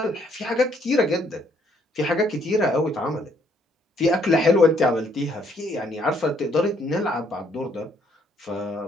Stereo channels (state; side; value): normal; both; correlation 0.68